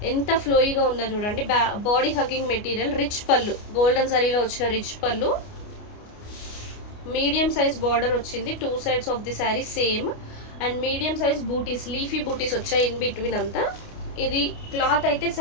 ఎంత ఫ్లోయిగా ఉందో చూడండి. బాడీ హగ్గింగ్ మెటీరియల్, రిచ్ పళ్ళు, గోల్డెన్ జరీలో వచ్చిన రిచ్ పళ్ళు, మీడియం సైజ్ బార్డర్ వచ్చింది 2 sides of the sari same. And medium size బూటీస్, లీఫీ బూటీస్ వచ్చాయి ఇన్ బిట్వీన్ అంతా. ఇది క్లాత్ అయితే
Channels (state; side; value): late; right; 29 ms